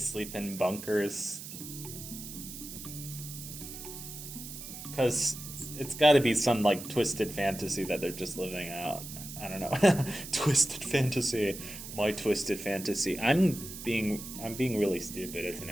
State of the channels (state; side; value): noise; right; hiss, 11 dB below the sound